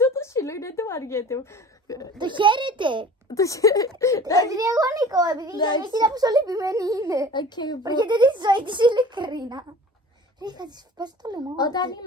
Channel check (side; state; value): both; normal; correlation 0.42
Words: το σύλλο είναι το βαριέται. Το χαίρεται. Επειδή εγώ νικώ, επειδή η γιαγιά κοίτα πόσο λυπημένη είναι. Βαριέται τη ζωή της ειλικρίνα. Ρε, θα της πας το λαιμό. Όταν η